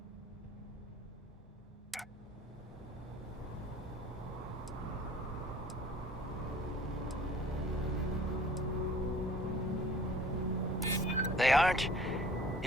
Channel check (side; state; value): both; normal; correlation 0.50